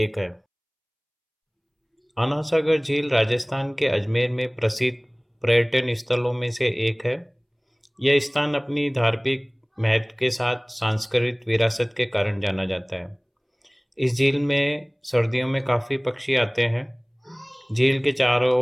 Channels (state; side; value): identical; both; correlation 1.00